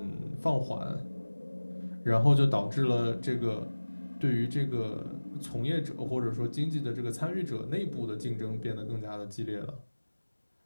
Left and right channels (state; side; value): inverted; both; correlation -1.00